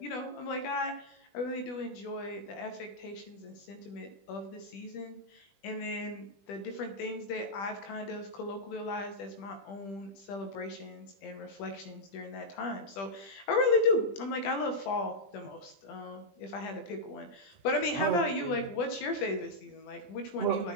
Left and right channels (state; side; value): late; right; 20 ms